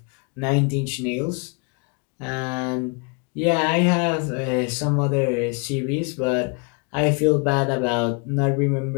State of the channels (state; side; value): quieter; right; 33.1 dB